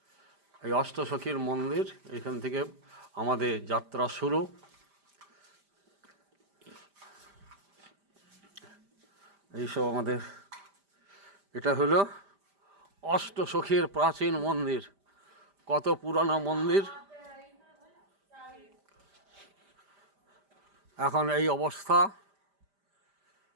এই অষ্টসখীর মন্দির, এখান থেকে আমাদের যাত্রা শুরু। এইসব আমাদের, এটা হলো অষ্টসখীর প্রাচীন মন্দির। কত পুরানো মন্দির, এখন এই অবস্থা।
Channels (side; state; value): left; late; 5.0 ms